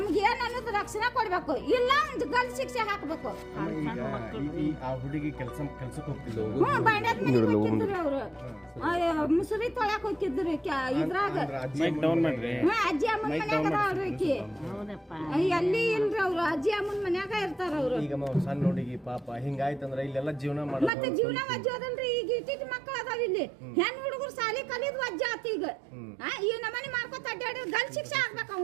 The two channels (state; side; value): drops out; left; at 20.9 s